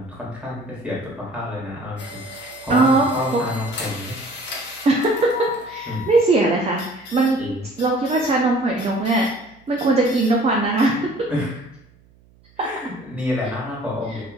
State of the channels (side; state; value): right; noise; hum, 29 dB below the sound